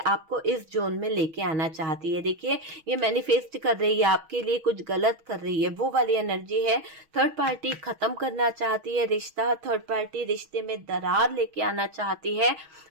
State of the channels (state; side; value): late; left; 6.2 ms